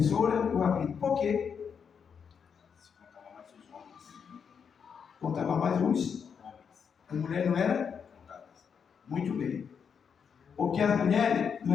e o Rabino. Por quê? Se contava mais os homens. Contava mais uns. A mulher não era? Contadas. Muito bem. Porque as mulheres não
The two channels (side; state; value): right; quieter; 6.8 dB